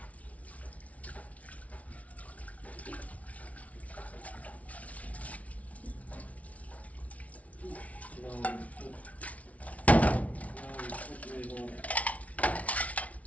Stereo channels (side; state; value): right; late; 0.067 ms